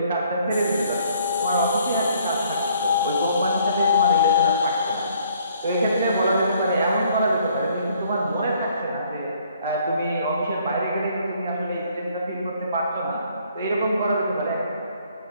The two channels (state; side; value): inverted; both; correlation -0.63